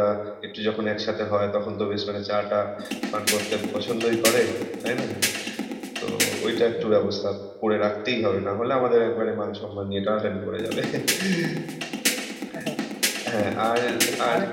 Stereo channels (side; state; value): both; identical; correlation 1.00